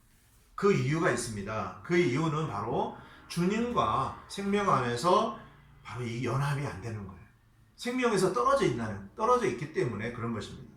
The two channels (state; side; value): identical; both; correlation 1.00